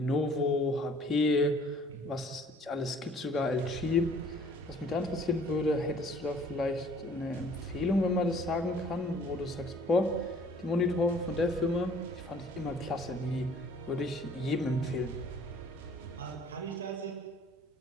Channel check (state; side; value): normal; both; correlation 0.55